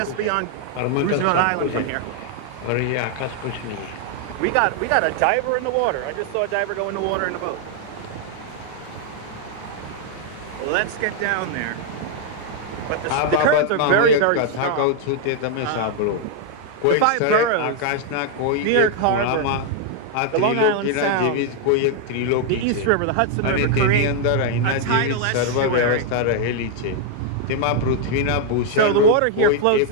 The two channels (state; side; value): different; both; correlation 0.00